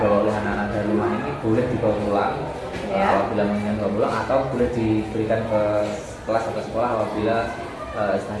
oleh anak-anak dari rumah ini boleh dibawa pulang apabila menginginkan dibawa pulang, atau boleh diberikan ke kelas atau sekolah apabila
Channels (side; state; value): both; identical; correlation 1.00